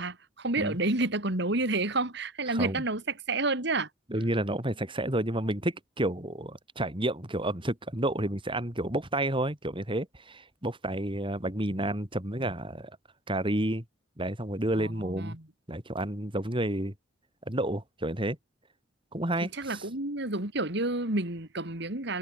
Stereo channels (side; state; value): both; normal; correlation 0.43